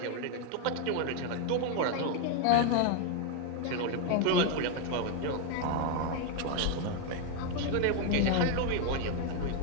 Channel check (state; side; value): different; both; correlation 0.01